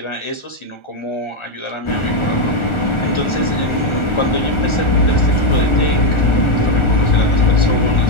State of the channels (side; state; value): right; late; 1.4 ms